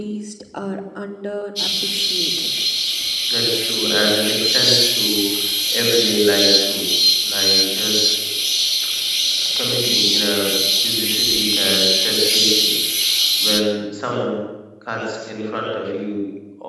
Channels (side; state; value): both; identical; correlation 1.00